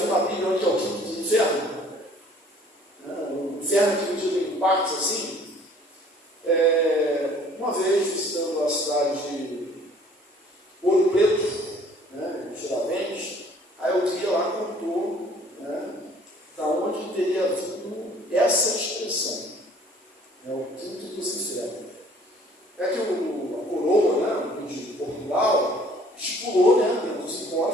na Bíblia onde é o quinto dos infernos? O inferno que dividido em partes assim. Uma vez visitando a cidade de Ouro Preto, Tiradentes, aí eu vi lá contou, da onde teria vindo essa expressão, o quinto dos infernos. É que a coroa, de Portugal, estipulou, dentro dos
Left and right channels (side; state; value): both; normal; correlation 0.55